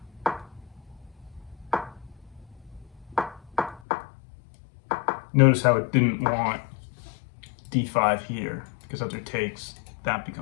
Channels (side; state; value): right; drops out; at 3.8 s